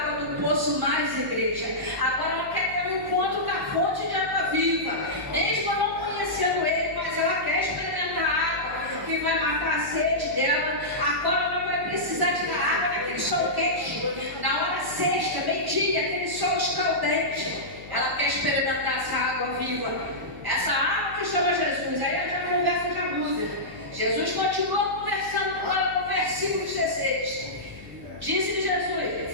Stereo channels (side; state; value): left; noise; hum, 18 dB below the sound